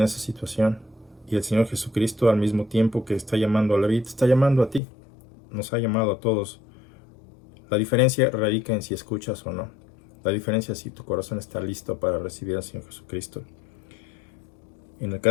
situación. Y el Señor Jesucristo, al mismo tiempo que está llamando a Leví, te está llamando a ti. Nos ha llamado a todos. La diferencia radica en si escuchas o no. La diferencia es si tu corazón está listo para recibir al Señor Jesucristo. En el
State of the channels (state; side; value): drops out; right; at 4.8 s